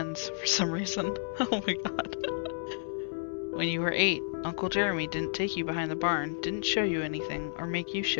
for some reason. Oh my god. When you were 8, Uncle Jeremy didn't take you behind the barn, didn't show you anything, or make you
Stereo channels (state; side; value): silent; right; digital silence